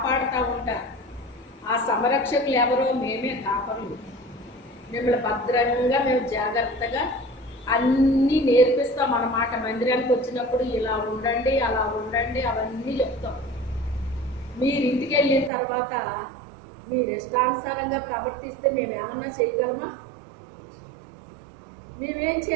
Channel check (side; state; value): left; drops out; at 15.5 s